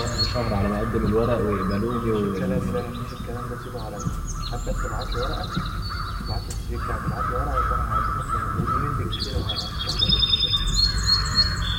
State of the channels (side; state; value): both; identical; correlation 1.00